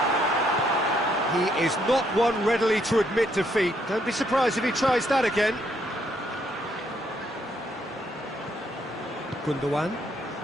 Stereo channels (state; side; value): normal; both; correlation 0.71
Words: He is not one readily to admit defeat. Don't be surprised if he tries that again. Gundogan.